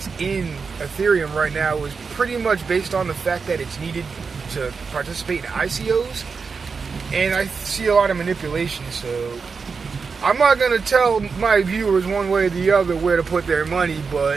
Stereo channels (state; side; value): quieter; left; 5.1 dB